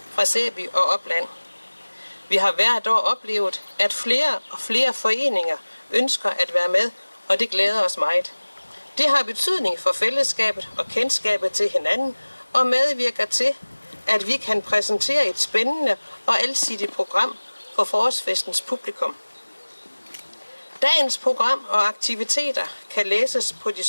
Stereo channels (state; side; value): inverted; both; correlation -1.00